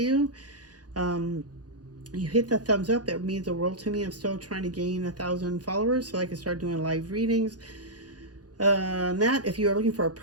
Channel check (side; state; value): left; late; 0.69 ms